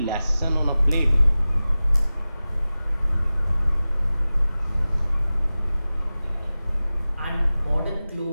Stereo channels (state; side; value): inverted; both; correlation -0.96